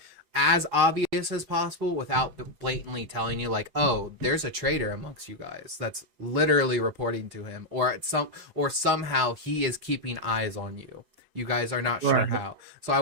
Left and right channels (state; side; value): late; left; 4.8 ms